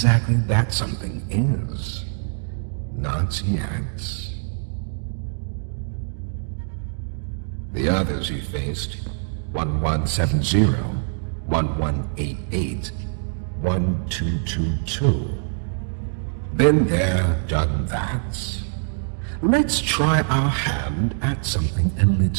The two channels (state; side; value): silent; left; digital silence